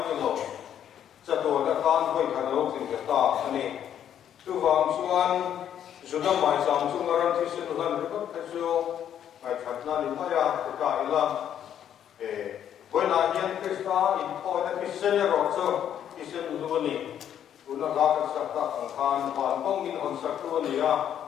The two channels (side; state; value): right; quieter; 9.8 dB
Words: những lốp sẽ tổ các atan với các lốp thì cái ta này tu vàng soan sudah mai sam sungaran thì sự lần rất cái số ngày thật là những cái cái là với là hiền Christa in thôi là cái sinh rồi số Isen luani, una lakat sakta angkan ban pongin on saktuani